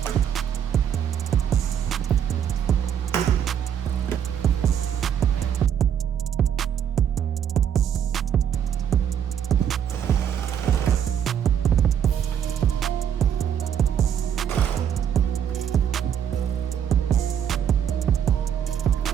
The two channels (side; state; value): left; quieter; 8.8 dB